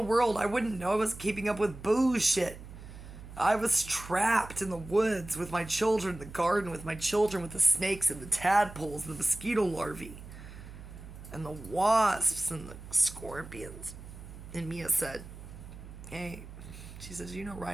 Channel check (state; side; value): noise; right; hum, 14 dB below the sound